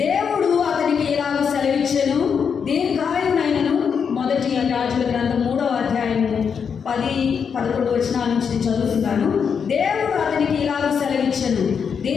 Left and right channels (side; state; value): right; quieter; 6.7 dB